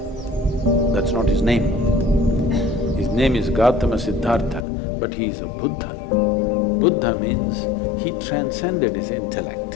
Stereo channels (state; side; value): drops out; right; at 4.7 s